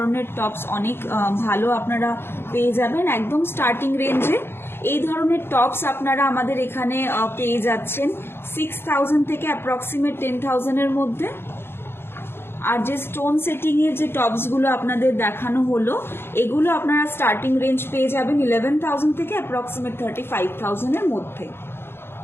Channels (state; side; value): late; right; 0.11 ms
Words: টপস অনেক ভালো আপনারা পেয়ে যাবেন একদম স্টার্টিং রেঞ্জে। এই ধরনের টপস আপনারা আমাদের এখানে পেয়ে যাচ্ছেন 6,000 থেকে অ্যাপ্রক্সিমেট 10,000-এর মধ্যে। আর যে স্টোন সেটিং এর যে টপসগুলো আপনাদের দেখানো হলো, এগুলো আপনারা স্টার্টিং রেঞ্জ পেয়ে যাবেন 11,000 থেকে অ্যাপ্রক্সিমেট 35,000-এর মধ্যে।